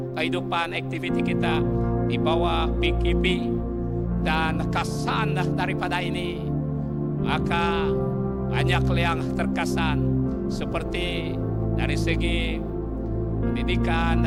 kehidupan aktiviti kita di bawah PKP, dan kesan daripada ini, maka banyak yang terkesan, seperti dari segi pendidikan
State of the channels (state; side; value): identical; both; correlation 1.00